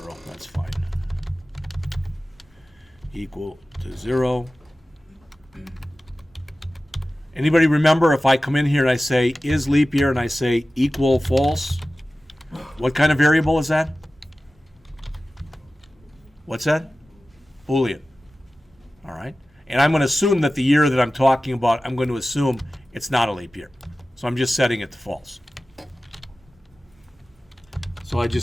That's fine. Equal to 0. Anybody remember if I come in here and I say is leap year and I say equal false, what kind of variable is that? What's that? Boolean. All right. And I'm going to assume that the year that I'm talking about, I'm going to assume it's not a leap year. So I'm just setting it to false. So I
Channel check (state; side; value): normal; both; correlation 0.96